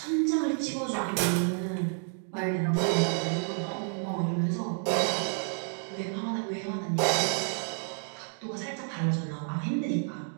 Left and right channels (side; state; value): left; silent; 58 dB below the other